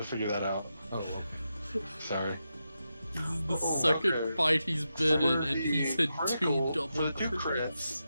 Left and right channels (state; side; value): inverted; both; correlation -0.87